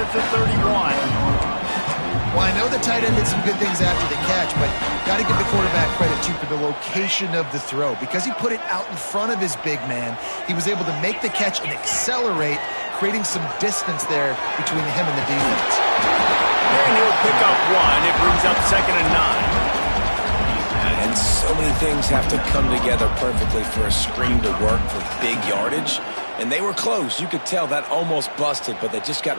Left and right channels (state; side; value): inverted; both; correlation -1.00